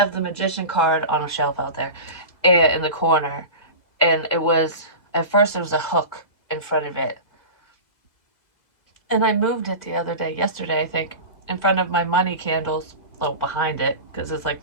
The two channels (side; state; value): right; late; 2.0 ms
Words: the Magician card on a shelf out there in the corner. And it was, at first there was a hook in front of it. And I moved it the other day, yesterday, I think, in front of my money candles. Oh, behind it, because it's like